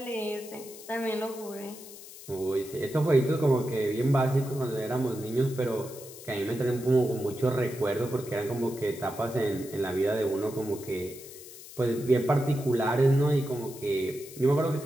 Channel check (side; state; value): left; noise; hiss, 16 dB below the sound